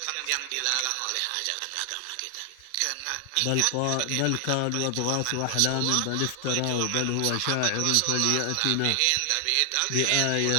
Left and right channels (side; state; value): both; different; correlation 0.00